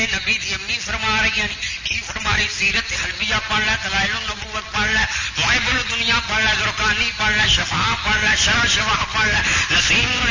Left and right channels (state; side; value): identical; both; correlation 1.00